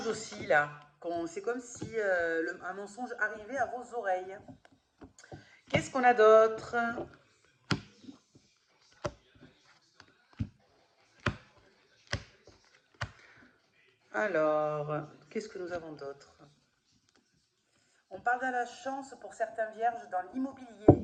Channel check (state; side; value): identical; both; correlation 1.00